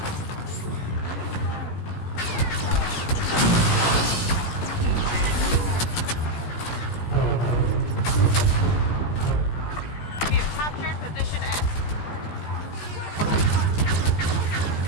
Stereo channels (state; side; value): late; right; 17 ms